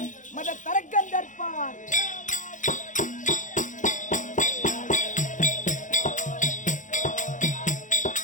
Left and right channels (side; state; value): right; late; 0.37 ms